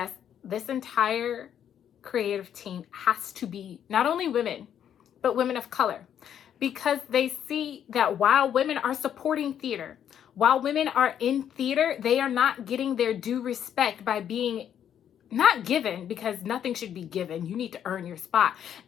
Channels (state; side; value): quieter; right; 9.4 dB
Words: this entire creative team has to be not only women, but women of color, because they see that while women are supporting theater, while women are in theater, they are not getting their due respect by being not given, because nothing should be given. You need to earn your spot.